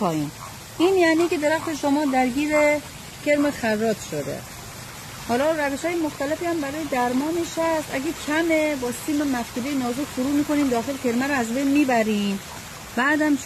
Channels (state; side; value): identical; both; correlation 1.00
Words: این یعنی که درخت شما درگیر کرم خراب شده. حالا روش‌های مختلفی هم برای درمانش هست. اگه کمه با سیم مفتوله نازک فرو می‌کنیم داخل کرمه رو از بین میبریم. بعدم